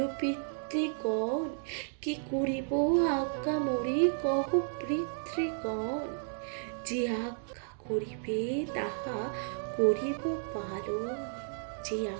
পিতৃগণ, কি করিব আজ্ঞা মোরে কহ পিতৃগণ। যে আজ্ঞা করিবে তাহা করিব পালন, যে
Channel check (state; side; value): silent; left; digital silence